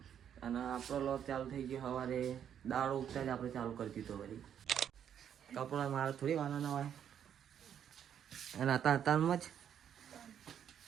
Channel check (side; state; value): left; quieter; 9.1 dB